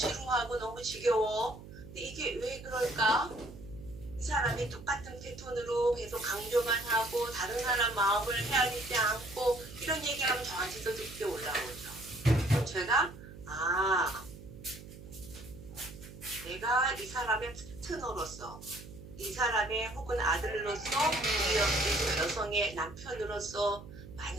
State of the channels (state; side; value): noise; right; hum, 15 dB below the sound